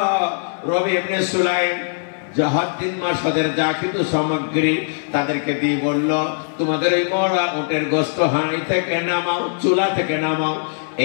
রবি ইবনে সুলাইম হজ 3 মাস হজের যা কিছু সামগ্রী তাদেরকে দিয়ে বলল, তোমাদের এই মরা উটের গোস্ত হাঁড়ি থেকে নামাও, চুলা থেকে নামাও,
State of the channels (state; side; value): silent; right; 65 dB below the other